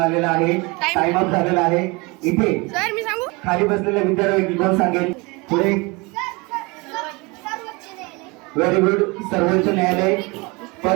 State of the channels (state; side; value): quieter; left; 26.5 dB